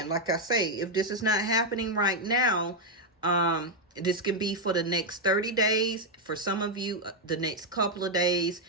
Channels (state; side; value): normal; both; correlation 0.01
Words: like I say, if this is not happening right now, this can be for the next 30 days. For some of you, the next couple of days.